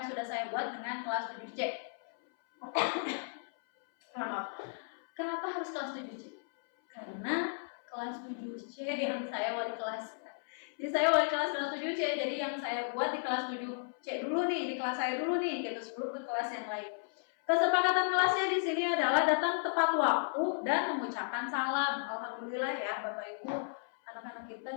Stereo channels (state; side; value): silent; right; 55 dB below the other